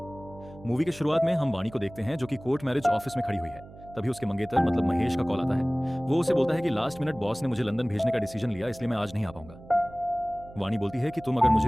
मूवी के शुरुआत में हम वाणी को देखते हैं जो कि कोर्ट मैरिज ऑफिस में खड़ी हुई है। तभी उसके मंगेतर मतलब महेश का कॉल आता है। वो उसे बोलता है कि लास्ट मिनट बॉस ने मुझे लंदन भेजने का डिसीजन लिया, इसलिए मैं आज नहीं आ पाऊंगा। वाणी बोलती है कि तुम अगर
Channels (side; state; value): right; noise; hum, 19 dB below the sound